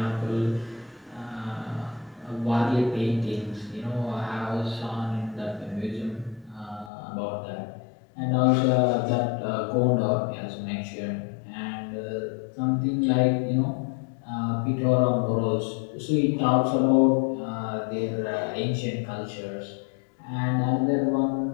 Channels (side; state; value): right; drops out; at 6.9 s